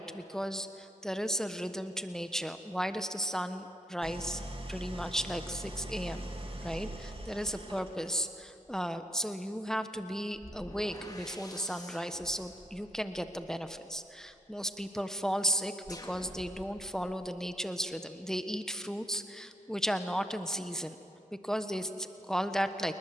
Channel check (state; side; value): normal; both; correlation 0.75